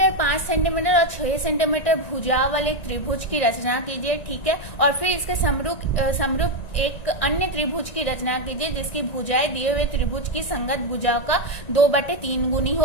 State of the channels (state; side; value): late; right; 1.9 ms